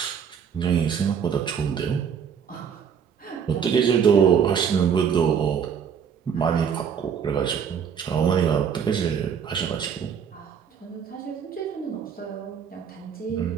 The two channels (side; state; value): left; quieter; 7.4 dB